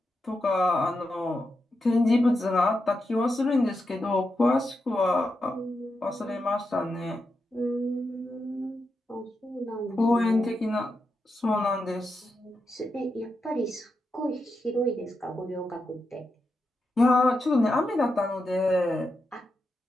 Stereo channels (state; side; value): normal; both; correlation 0.86